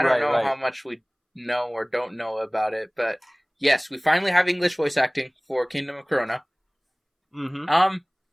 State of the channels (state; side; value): identical; both; correlation 1.00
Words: don't know how much we know or don't know about it. But yes, we finally have English voice acting for Kingdom of Corona.